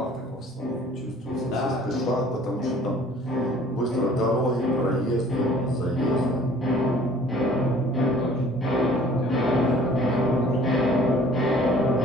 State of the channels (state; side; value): normal; both; correlation 0.53